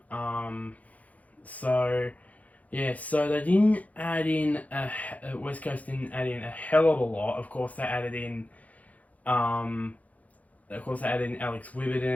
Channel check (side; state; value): right; late; 0.072 ms